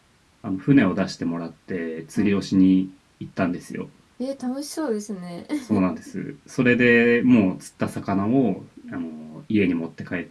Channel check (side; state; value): both; identical; correlation 1.00